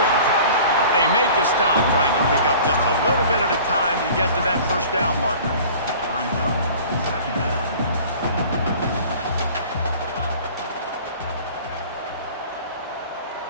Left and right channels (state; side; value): inverted; both; correlation -0.44